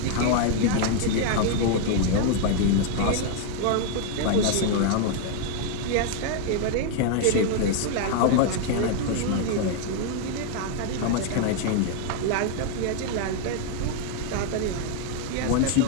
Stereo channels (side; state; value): both; different; correlation 0.00